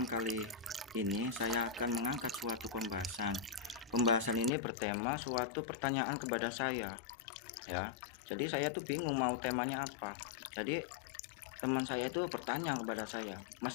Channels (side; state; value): right; drops out; at 4.5 s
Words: kali ini saya akan mengangkat suatu pembahasan. Pembahasan ini bertema suatu pertanyaan kepada saya, ya. Jadi saya tuh bingung mau temanya apa. Jadi teman saya itu bertanya kepada saya, Mas